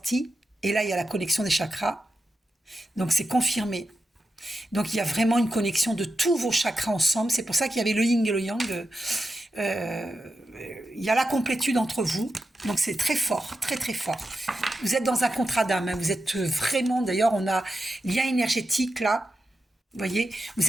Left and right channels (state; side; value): normal; both; correlation 0.90